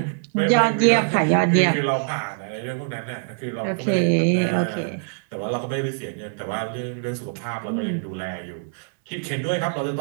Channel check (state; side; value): silent; left; digital silence